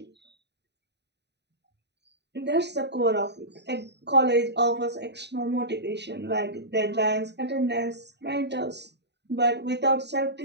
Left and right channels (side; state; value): left; late; 0.50 ms